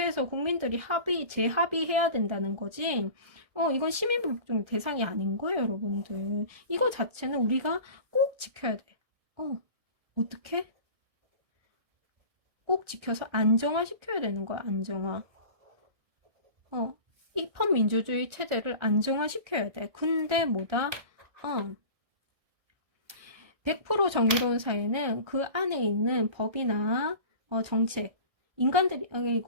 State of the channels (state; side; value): late; left; 1.6 ms